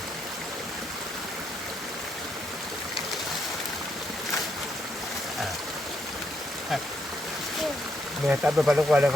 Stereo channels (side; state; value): both; normal; correlation 0.78